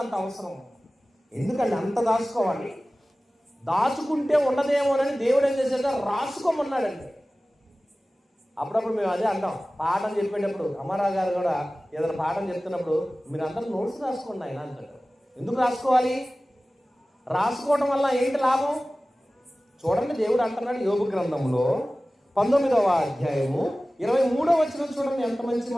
అవసరం. ఎందుకంటే అంత దాచుకోవాలి. దాచుకుంటే ఉండదేమోనని దేవుడు ఏం చేశాక రాసుకోమన్నాడండి. అప్పుడప్పుడు మేము అదే అంటాం, పాఠం చెప్పేటప్పుడు అమ్మారావు గారు కూడా ఏదైనా పాఠం చెప్తున్నప్పుడు మీరు అందరూ నోట్స్ రాసుకోండి ఆయన అంటారు. ఎందుకు రాసుకోవాలి? రాసుకోవడం వల్ల ఏంటి లాభం? చూడండి, దేవుడు అంటున్నాడు యోబు గ్రంథంలో 19వ అధ్యాయము 23వ వచనం చూడండి, ఎంత మంచి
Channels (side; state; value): both; normal; correlation 0.97